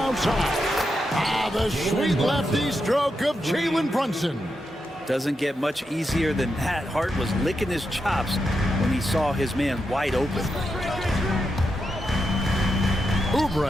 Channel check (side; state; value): both; normal; correlation 0.86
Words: The sweet lefty stroke of Jalen Brunson. Doesn't get much easier than that. Hart was licking his chops when he saw his man wide open.